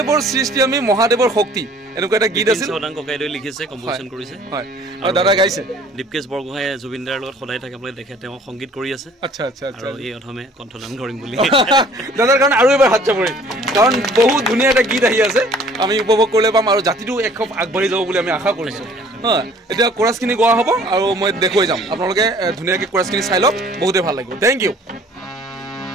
সৃষ্টি আমি মহাদেৱৰ শক্তি এনেকুৱা এটা গীত আছিল সদাং ককাইদেৱে লিখিছে কম্পোজিশন কৰিছে হয় আৰু দাদা গাইছে দীপকেশ বৰগোহাঁই জুবিনদাৰ লগত সদায় থাকে আপোনালোকে দেখে তেওঁ সংগীত কৰি আছে আচ্ছা আৰু এই অধমে কণ্ঠদান কৰিম বুলি দাদাৰ কাৰণে আৰু এবাৰ হাত চাপৰি কাৰণ বহুত ধুনীয়া এটা গীত আহি আছে আমি উপভোগ কৰিলে পাম আৰু জাতিটো একখপ আগবাঢ়ি যাব বুলি আমি আশা কৰিছোঁ হয় এতিয়া কোৰাছখিনি গোৱা হ'ব আৰু মই দেখুৱাই যাম আপোনালোকে ধুনীয়াকৈ কোৰাছখিনি চাই লওক বহুতেই ভাল লাগিব থেংক ইউ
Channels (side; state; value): both; normal; correlation 0.54